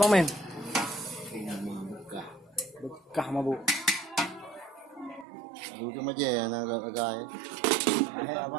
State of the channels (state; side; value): drops out; left; at 5.2 s